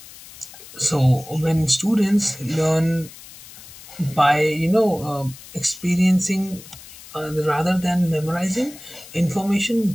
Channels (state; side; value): noise; left; hiss, 18 dB below the sound